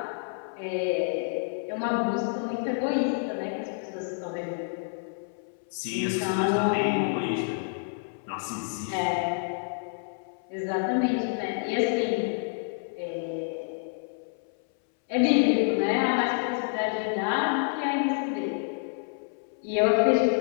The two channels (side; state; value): right; silent; 59 dB below the other